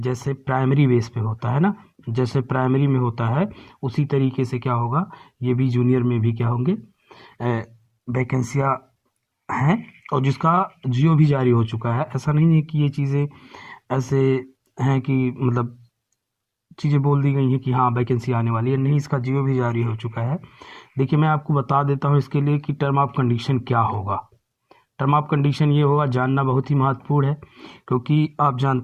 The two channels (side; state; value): both; identical; correlation 1.00